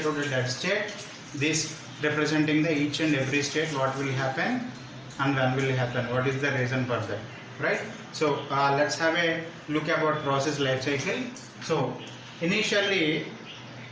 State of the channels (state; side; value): identical; both; correlation 1.00